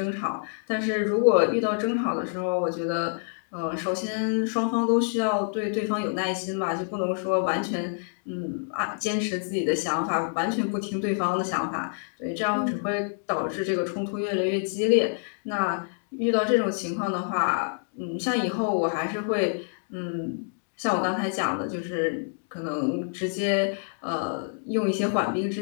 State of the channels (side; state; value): right; silent; digital silence